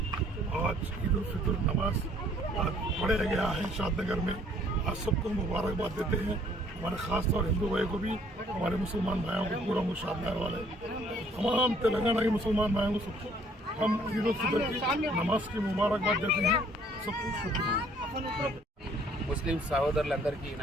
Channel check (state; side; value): normal; both; correlation 0.61